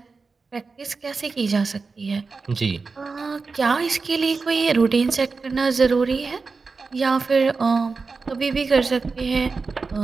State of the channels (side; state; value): left; quieter; 4.4 dB